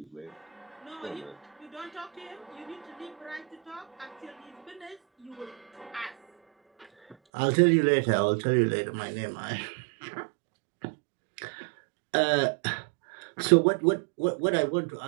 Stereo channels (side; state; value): left; drops out; at 7.2 s